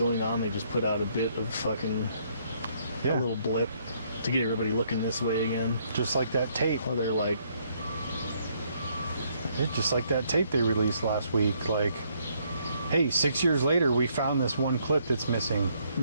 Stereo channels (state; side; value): inverted; both; correlation -0.70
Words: on? They just put out a bit of fucking a little blip to get everybody looking this way again. Just like that tape. Or they're like, just like that tape they released last week. Like, hey, 6 years later, we found this one clip that's missing.